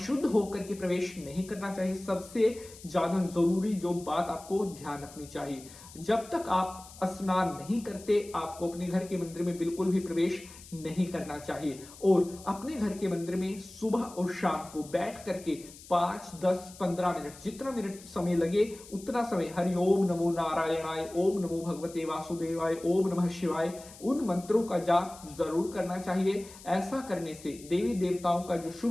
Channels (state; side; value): noise; left; hiss, 18 dB below the sound